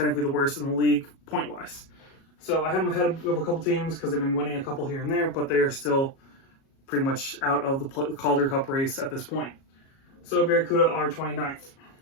the worst in the league point-wise. So I have them ahead of a couple teams because they've been winning a couple here and there, but they are still pretty much out of the Calder Cup race at this point. So Barracuda are 29th.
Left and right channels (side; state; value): right; late; 37 ms